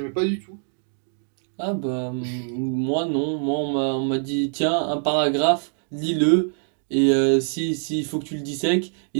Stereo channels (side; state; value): left; silent; digital silence